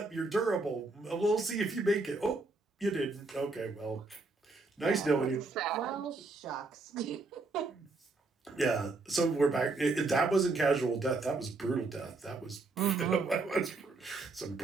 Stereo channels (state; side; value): quieter; left; 3.5 dB